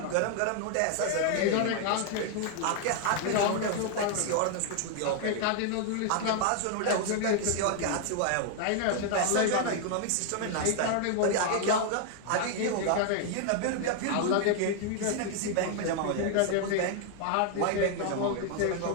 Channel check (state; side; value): different; both; correlation 0.00